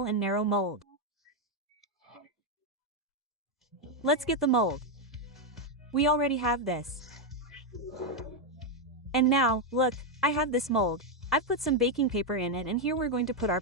and narrow mold. Let's get the mold. We already have this. And now, look, I have this mold. I've put some baking paper in it, and here we're going to put our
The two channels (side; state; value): both; normal; correlation 0.03